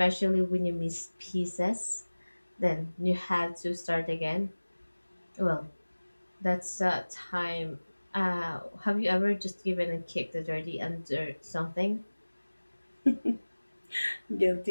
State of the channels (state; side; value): inverted; both; correlation -1.00